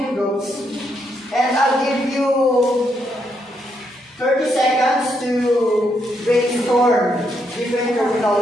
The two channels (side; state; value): both; normal; correlation 0.78